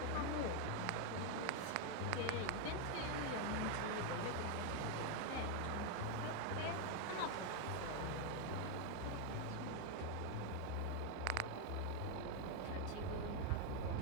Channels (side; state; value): both; different; correlation 0.01